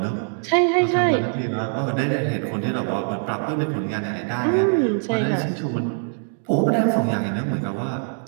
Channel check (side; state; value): left; silent; digital silence